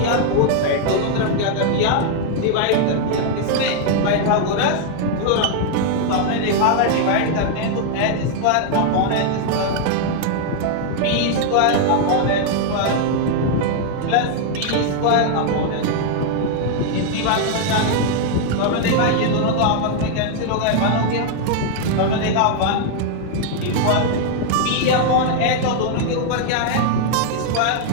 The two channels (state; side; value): different; both; correlation 0.00